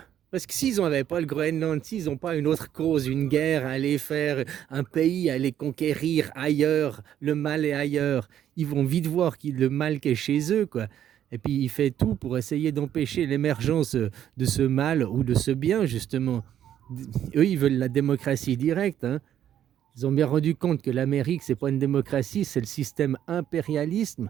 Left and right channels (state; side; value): quieter; left; 10.5 dB